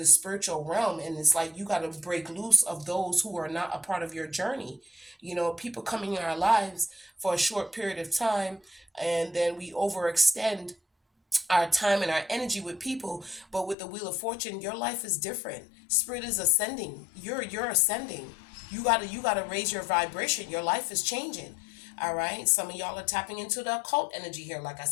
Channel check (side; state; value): right; drops out; at 13.8 s